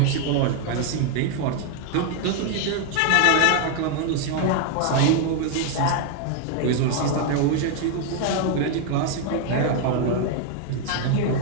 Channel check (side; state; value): both; different; correlation 0.00